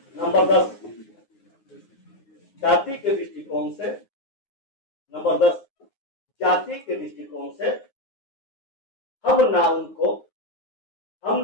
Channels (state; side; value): late; right; 9.6 ms